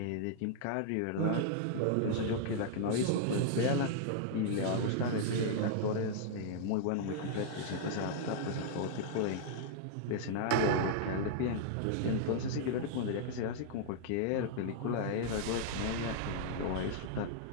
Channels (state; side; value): different; both; correlation -0.01